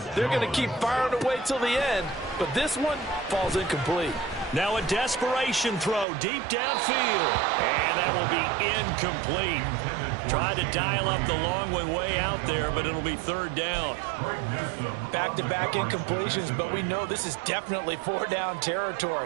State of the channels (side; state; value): left; drops out; at 6.1 s